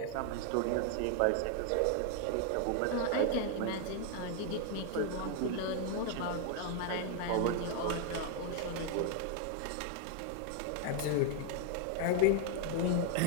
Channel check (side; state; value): both; different; correlation 0.00